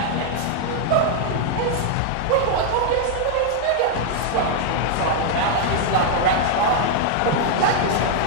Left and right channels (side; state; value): both; different; correlation 0.00